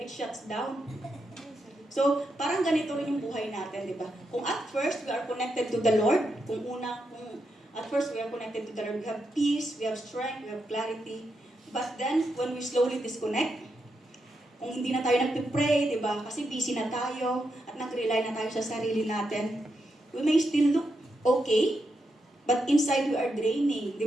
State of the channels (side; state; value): both; normal; correlation 0.84